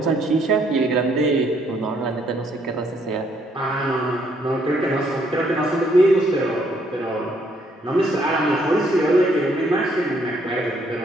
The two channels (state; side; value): normal; both; correlation 0.69